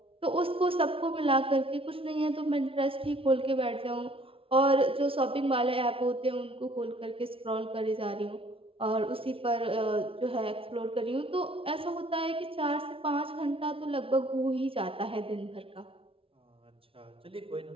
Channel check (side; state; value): left; late; 0.26 ms